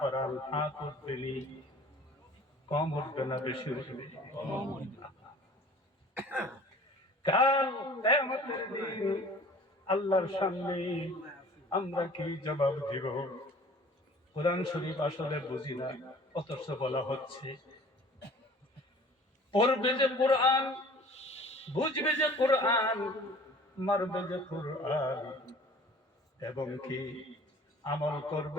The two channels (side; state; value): both; normal; correlation 0.48